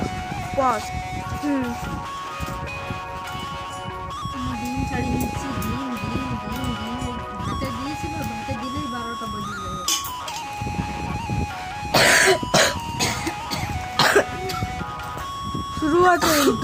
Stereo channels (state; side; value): identical; both; correlation 1.00